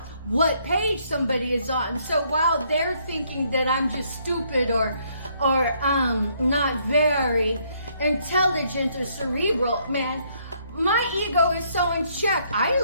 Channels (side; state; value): both; inverted; correlation -0.69